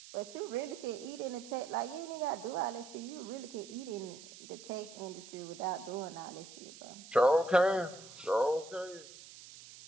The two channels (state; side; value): noise; right; hiss, 16 dB below the sound